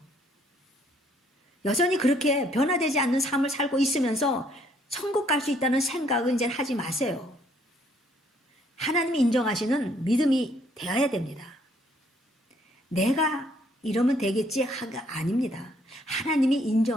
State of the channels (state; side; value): normal; both; correlation 0.66